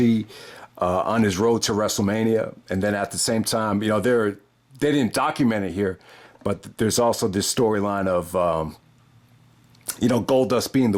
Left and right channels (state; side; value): identical; both; correlation 1.00